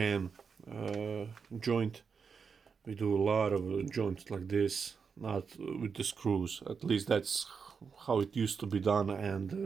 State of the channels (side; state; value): left; quieter; 5.8 dB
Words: joint. We do a lot of joints like this, not with the screws. At least that's how it used to be done,